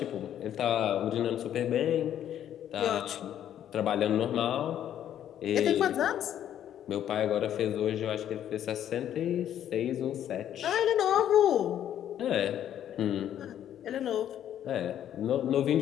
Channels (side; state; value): right; quieter; 10.6 dB